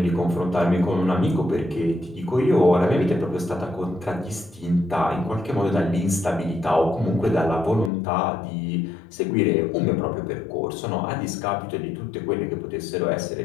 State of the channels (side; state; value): right; drops out; at 7.9 s